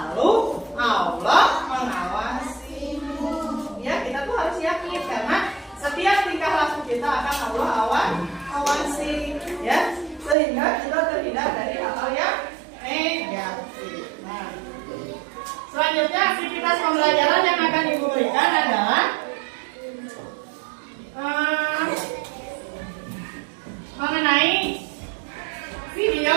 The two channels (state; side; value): drops out; left; at 10.4 s